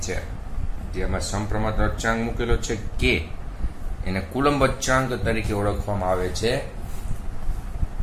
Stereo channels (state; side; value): identical; both; correlation 1.00